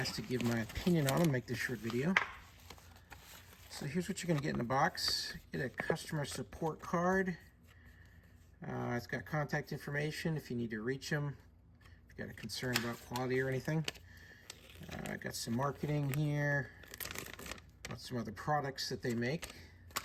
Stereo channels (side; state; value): both; identical; correlation 1.00